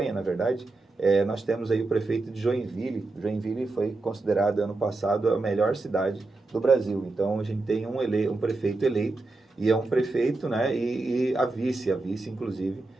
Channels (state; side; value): quieter; left; 3.3 dB